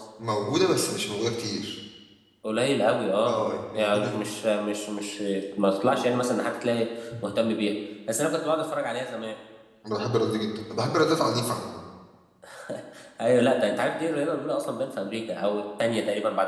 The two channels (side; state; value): both; identical; correlation 1.00